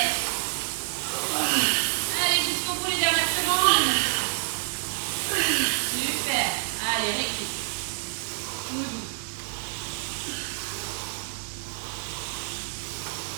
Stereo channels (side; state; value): left; silent; digital silence